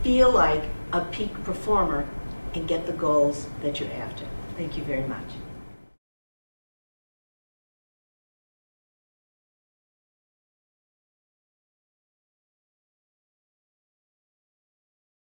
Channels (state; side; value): inverted; both; correlation -1.00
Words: feel like a peak performer, and get the goals that you're after. Thank you very much.